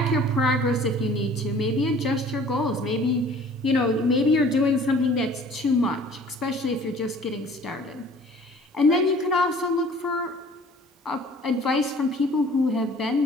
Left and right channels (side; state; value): both; normal; correlation 0.50